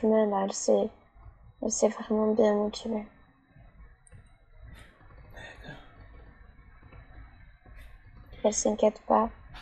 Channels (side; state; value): both; identical; correlation 1.00